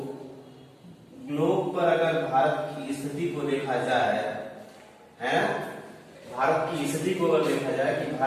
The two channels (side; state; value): both; identical; correlation 1.00